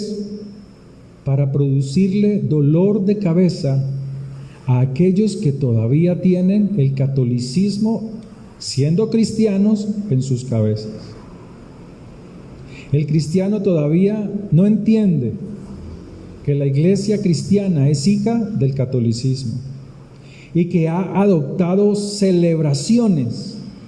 para producirle dolor de cabeza a aquellos que todavía tienen el catolicismo, siendo cristianos, en sus cabezas. El cristiano todavía no entiende que la iglesia cristiana es hija del catolicismo y que ha adoptado celebraciones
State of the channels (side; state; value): both; identical; correlation 1.00